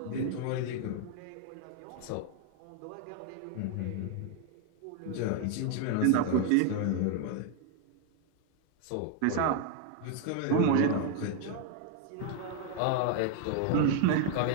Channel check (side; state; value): both; different; correlation 0.00